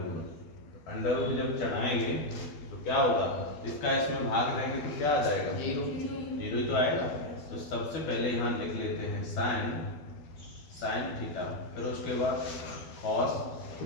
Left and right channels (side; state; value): right; late; 12 ms